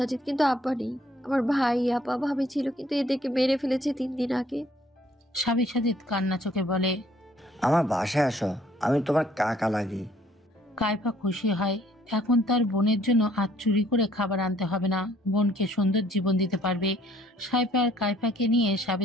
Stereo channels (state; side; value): normal; both; correlation 0.62